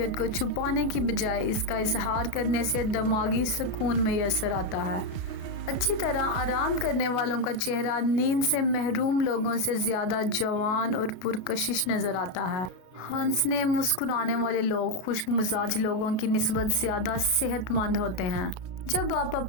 को छुपाने की बजाय इसका इजहार करने से दिमागी सुकून मैसर आता है। अच्छी तरह आराम करने वालों का चेहरा नींद से महरूम लोगों से ज़्यादा जवान और पुरकशिश नज़र आता है। हंसने मुस्कुराने वाले लोग खुश्क मिजाज लोगों की निस्बत ज़्यादा सेहतमंद होते हैं। जब आप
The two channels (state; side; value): late; right; 32 ms